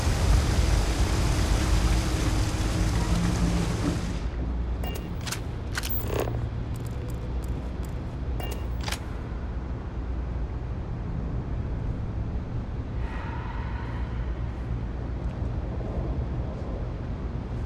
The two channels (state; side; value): identical; both; correlation 1.00